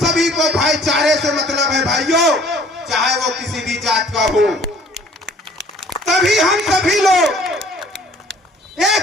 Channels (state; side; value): normal; both; correlation 0.54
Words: को भाईचारे से मतलब है भाइयों, चाहे वो किसी भी जात का हो। तभी हम सभी लोग